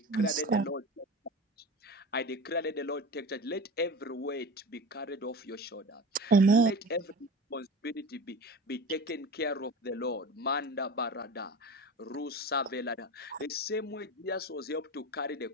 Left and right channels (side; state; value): both; normal; correlation 0.32